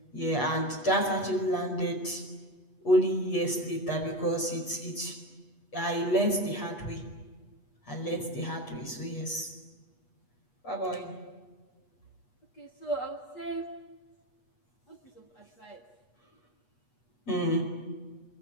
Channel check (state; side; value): late; right; 8.3 ms